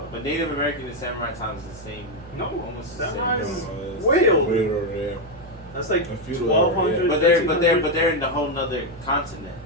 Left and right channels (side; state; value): both; normal; correlation 0.04